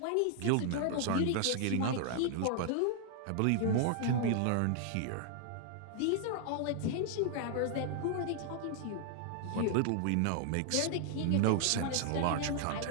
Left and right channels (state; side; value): different; both; correlation 0.00